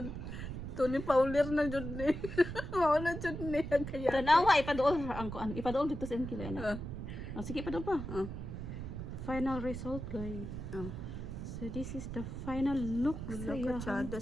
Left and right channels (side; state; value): right; noise; rumble, 7 dB below the sound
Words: Tony Paulir na jud ni. Mawala jud ni kaya. Tanawa, ipadool. Ipadool dito sa inkila na. Ah. Sige, ipadool pa. Final result, guys. So, this is the final look sa Wala iyang ka